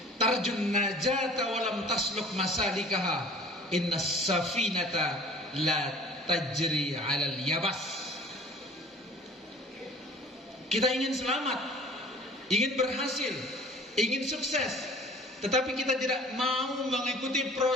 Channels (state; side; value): normal; both; correlation 0.48